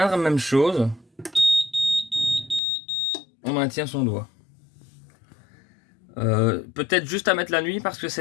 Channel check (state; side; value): drops out; right; at 2.6 s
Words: même chose. On maintient son doigt. Peut-être juste à mettre la nuit parce que